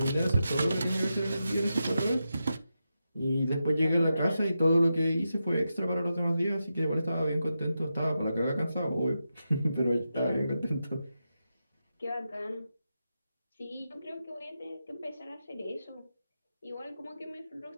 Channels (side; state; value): both; inverted; correlation -0.88